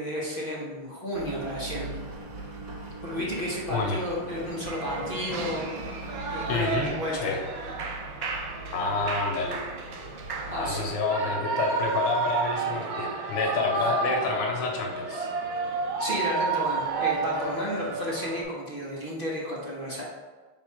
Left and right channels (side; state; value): right; late; 6.0 ms